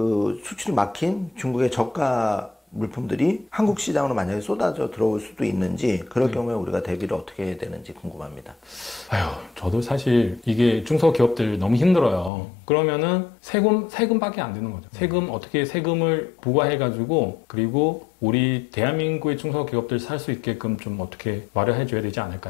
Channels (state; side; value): drops out; right; at 12.3 s